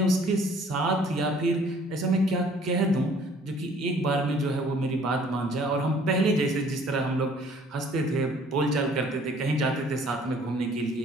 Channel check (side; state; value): both; normal; correlation 0.56